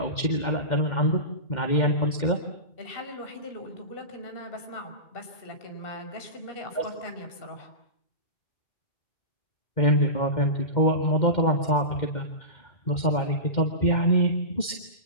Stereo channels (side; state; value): right; late; 2.1 ms